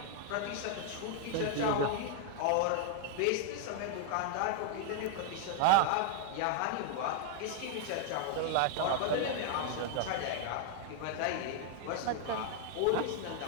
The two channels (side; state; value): both; different; correlation 0.00